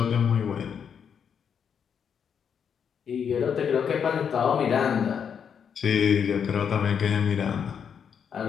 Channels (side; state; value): right; quieter; 7.4 dB